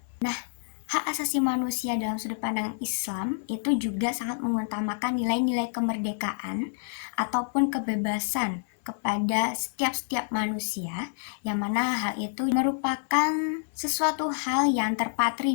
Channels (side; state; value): right; silent; 59 dB below the other